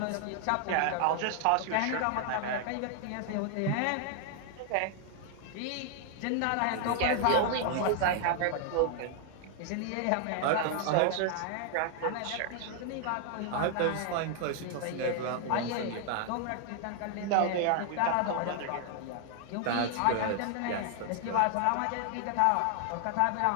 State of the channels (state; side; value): different; both; correlation 0.00